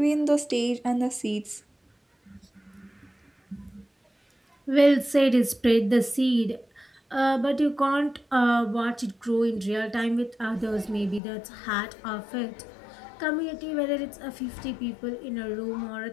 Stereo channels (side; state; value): right; drops out; at 11.2 s